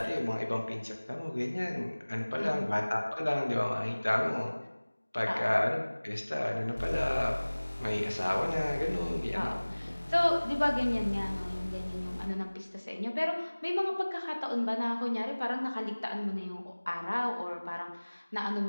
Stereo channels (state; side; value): inverted; both; correlation -1.00